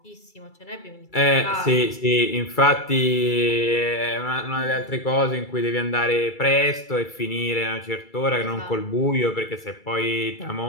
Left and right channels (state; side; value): late; right; 2.3 ms